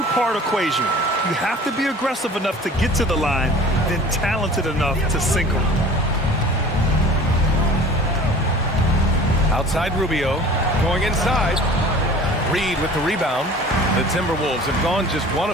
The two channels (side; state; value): both; normal; correlation 0.45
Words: equation. You have to be aggressive enough to get to the line, then talented enough to sink them. Outside Rubio, going inside. Reed with the rebound. The Timberwolves have gone just 1